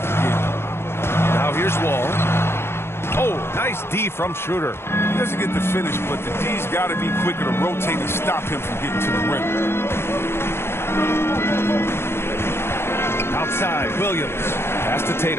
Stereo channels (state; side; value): late; right; 0.12 ms